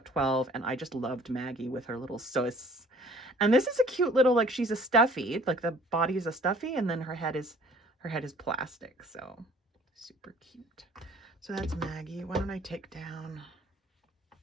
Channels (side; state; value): both; normal; correlation 0.53